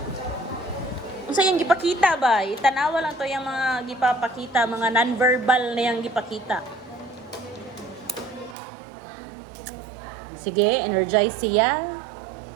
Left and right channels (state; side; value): drops out; left; at 8.6 s